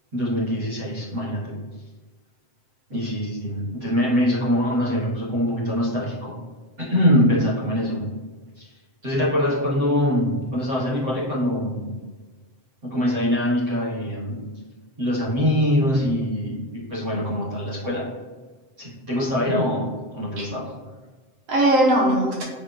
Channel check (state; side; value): late; left; 7.7 ms